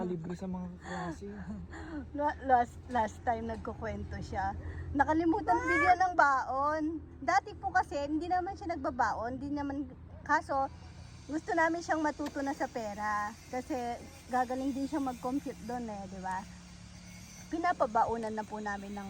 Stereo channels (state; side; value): identical; both; correlation 1.00